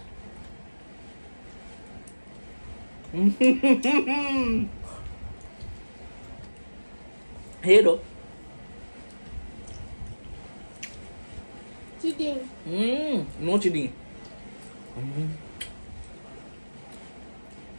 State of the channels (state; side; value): inverted; both; correlation -1.00